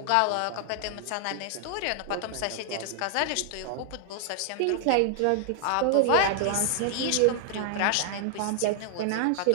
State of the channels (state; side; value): different; both; correlation 0.00